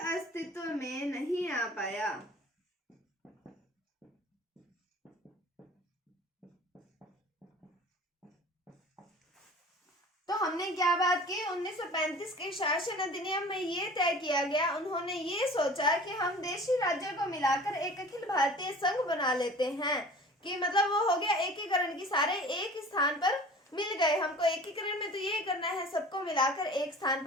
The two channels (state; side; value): normal; both; correlation 0.43